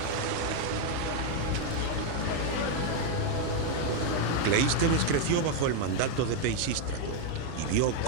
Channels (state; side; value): different; both; correlation 0.01